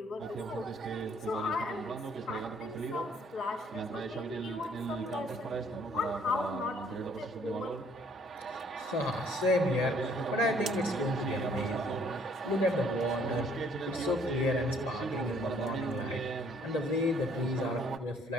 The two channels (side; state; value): both; normal; correlation 0.62